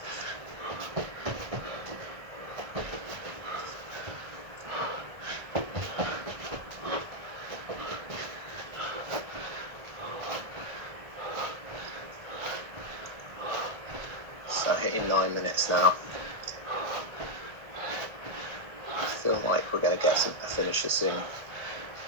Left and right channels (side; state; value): left; late; 1.5 ms